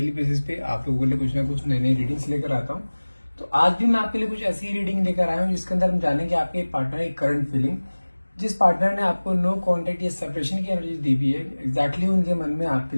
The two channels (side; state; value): both; inverted; correlation -1.00